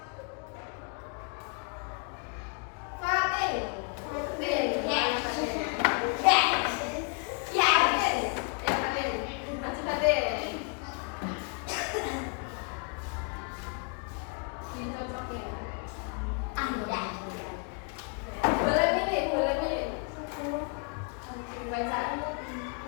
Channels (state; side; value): quieter; right; 35.3 dB